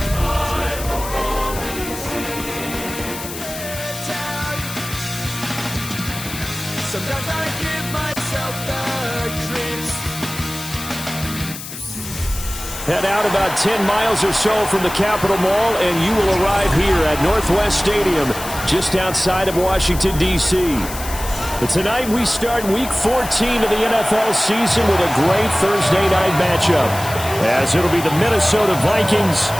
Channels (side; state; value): left; noise; hiss, 10 dB below the sound